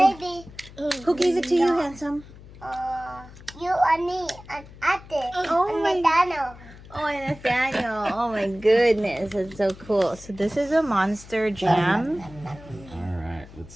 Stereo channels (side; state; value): left; noise; hum, 19 dB below the sound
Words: who gave it to you, handsome? You and me and Ate Oh and my- Nathaniel. Oh, and Nathaniel. Oh my goodness, that's so cool. So this is a monster jam. Alright, let's